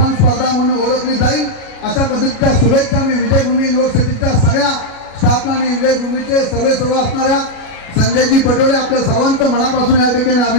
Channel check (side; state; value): right; late; 37 ms